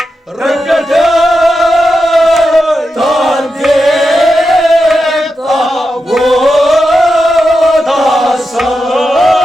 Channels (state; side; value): normal; both; correlation 0.89